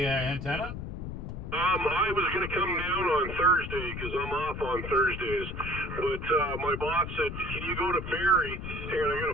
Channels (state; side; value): noise; left; rumble, 7 dB below the sound